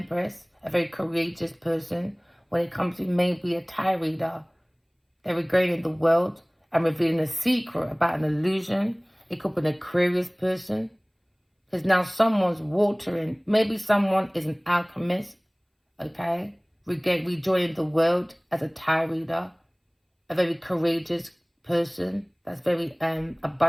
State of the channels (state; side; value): identical; both; correlation 1.00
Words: a very courageous person. When it comes to maybe a tarot reader, they're regaining the world and revealing a secret about an illusion. It could be an Aquarius person. Because now someone's watering. Maybe someone is an alchemist. Okay? Rejoining the world as a tarot reader. A very courageous person. That's very